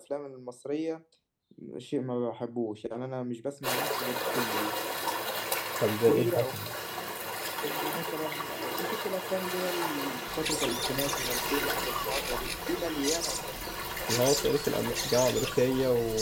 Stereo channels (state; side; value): identical; both; correlation 1.00